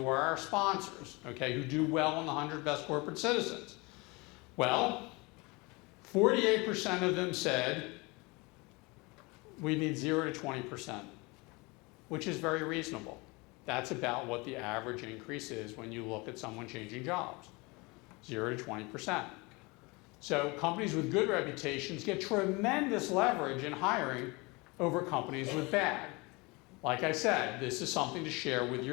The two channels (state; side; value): quieter; right; 26.0 dB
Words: are our sponsors, okay, who do well on the 100 Best Corporate Citizens. Well, 48% of them said we need 0 to 20%, which is very reasonable. That's about what the average increase is when you look at someone changing jobs, 0 to 20%. So companies with good reputations get tremendous leverage in hiring over companies with bad. Like I said, this is something to share with